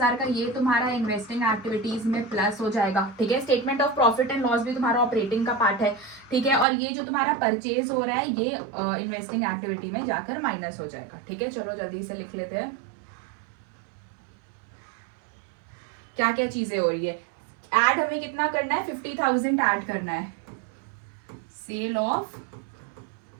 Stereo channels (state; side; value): drops out; left; at 6.7 s